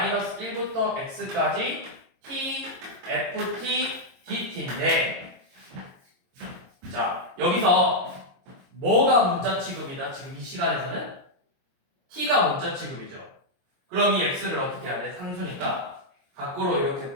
1부터 x까지 t ft dt인데 자, 여기서 뭐가 문자 취급이다? 지금 이 시간에서는 t가 문자 취급이죠. 그럼 이 x를 어떻게 해야 돼? 상수니까 밖으로 이렇게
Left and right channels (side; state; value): left; late; 22 ms